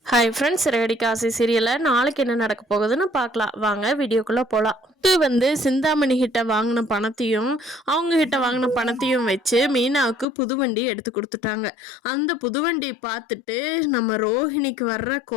Hi friends, radii Kashi சீரியலில் நாளைக்கு என்ன நடக்க போகுதுன்னு பார்க்கலாம். வாங்க வீடியோக்குள்ளே போகலாம். வந்து சிந்தாமணி கிட்ட வாங்கின பணத்தையும் அவங்க கிட்ட வாங்கின பணத்தையும் வச்சு மீனாவுக்கு புதுவண்டி எடுத்து கொடுத்துட்டாங்க. அந்த புதுவண்டி பார்த்துட்டு நம்ம ரோஹிணிக்கு வர்ற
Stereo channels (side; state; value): right; drops out; at 10.2 s